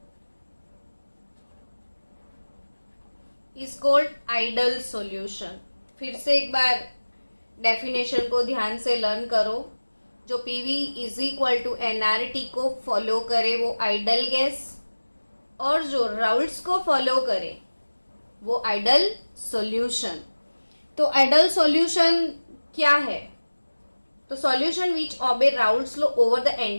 is called ideal solution। फिर से एक बार definition को ध्यान से learn करो। जो PV is equal to NRT को follow करे वो आइडल गैस, और जो राउल्ट्स को फॉलो करे वो आइडल सॉल्यूशन। तो आइडल सॉल्यूशन क्या है? तो solution which obey Raoult's law over the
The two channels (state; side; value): inverted; both; correlation -1.00